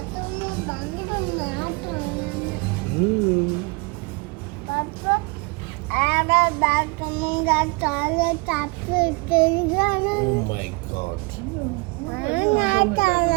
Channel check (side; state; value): left; quieter; 28.8 dB